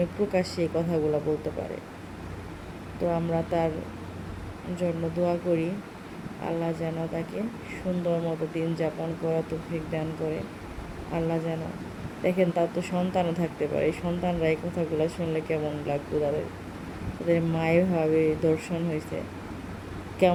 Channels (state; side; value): identical; both; correlation 1.00